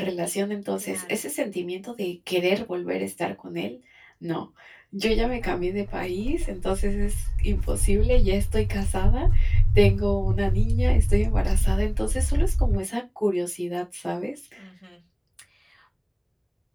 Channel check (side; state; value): both; identical; correlation 1.00